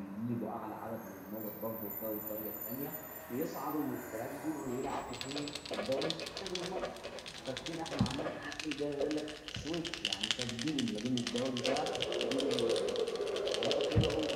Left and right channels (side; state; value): both; identical; correlation 1.00